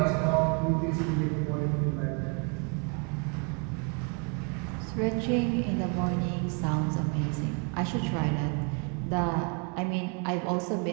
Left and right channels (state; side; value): quieter; left; 34.1 dB